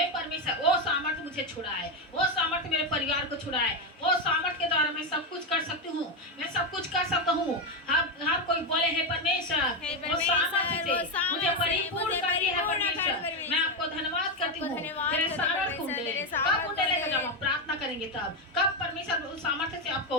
परमेश्वर, वो सामर्थ मुझे छुड़ाए, वो सामर्थ मेरे परिवार को छुड़ाए, वो सामर्थ के द्वारा मैं सब कुछ कर सकती हूँ। मैं सब कुछ कर सकता हूँ। हर कोई बोले हे परमेश्वर, वो सामर्थ से मुझे परिपूर्ण कर दिया है। परमेश्वर, मैं आपको धन्यवाद करती हूँ। मेरे सामर्थ कुंडले कब कुंडले का जब हम प्रार्थना करेंगे तब, कब परमेश्वर उस सामर्थ्य से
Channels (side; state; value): both; normal; correlation 0.09